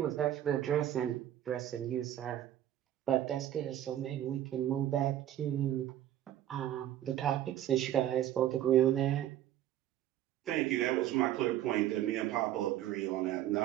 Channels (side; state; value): left; quieter; 12.1 dB